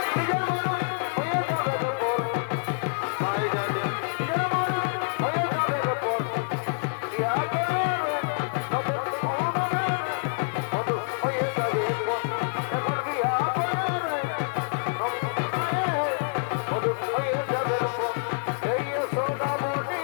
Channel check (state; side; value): silent; right; 60 dB below the other